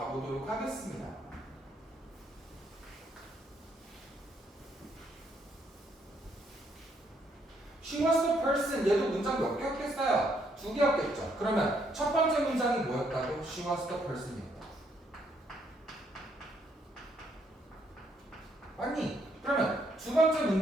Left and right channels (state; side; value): normal; both; correlation 0.72